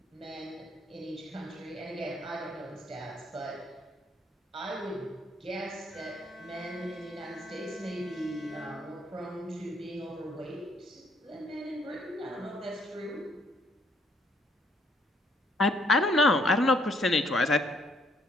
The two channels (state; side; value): normal; both; correlation 0.67